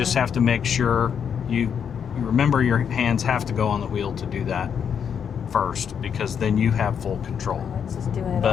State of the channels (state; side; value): quieter; right; 7.6 dB